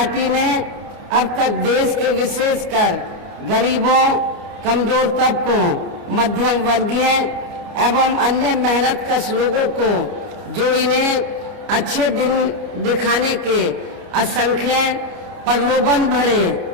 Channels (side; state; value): left; late; 29 ms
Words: ने अब तक देश के विशेषकर गरीबों, कमजोर तबकों, मध्यम वर्गीय एवं अन्य मेहनतकश लोगों को जो इन्हें अच्छे दिन दिखाने के असंख्य प्रलोभन भरे